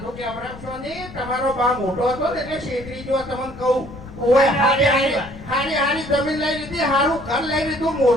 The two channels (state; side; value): noise; left; rumble, 16 dB below the sound